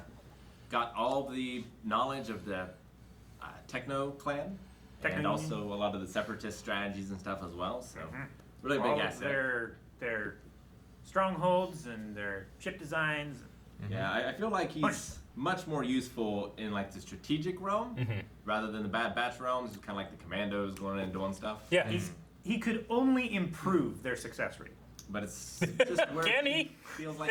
all the knowledge of the Techno clan, and also a lot of the Separatist strategies and stuff as well. So, really big asset. Their strongholds and their ship designs. Yeah, I feel like he's much more useful in like the strategic realm rather than the Bad Batch realms. It's kind of like the commandos going in and doing stuff. Yeah. He could only improve their success rate. But it's just where Can he? Feels like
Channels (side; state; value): both; identical; correlation 1.00